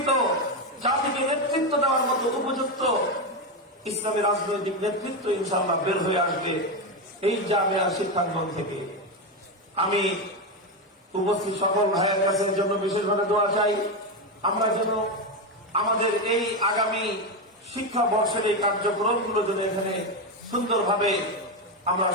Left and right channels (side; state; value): both; normal; correlation 0.11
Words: জাতিকে নেতৃত্ব দেওয়ার মতো উপযুক্ত ইসলামী রাজনৈতিক নেতৃত্ব ইনশাআল্লাহ বের হয়ে আসবে এই জামিয়া শিক্ষাঙ্গন থেকে। আমি উপস্থিত সকল ভাইয়ের কাছের জন্য বিশেষভাবে দোয়া চাই, আমরা যেন আমাদের এই আগামী শিক্ষা বর্ষের এই কার্যক্রমগুলো যেন এখানে সুন্দরভাবে আমরা